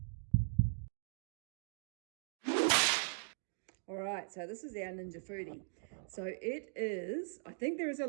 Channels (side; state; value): left; silent; digital silence